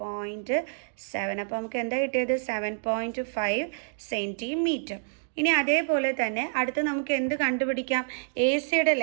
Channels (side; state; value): left; silent; digital silence